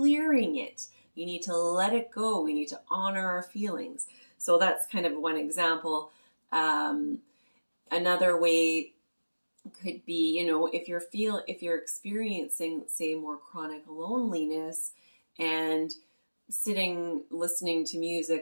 it. You need to let it go. We need to honor our feelings. So that's kind of one example. Um, Another way could be, if you're experiencing, say, more chronic loneliness, and sitting listening to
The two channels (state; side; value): inverted; both; correlation -1.00